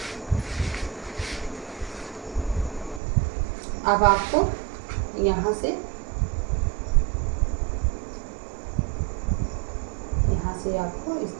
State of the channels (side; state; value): left; drops out; at 3.0 s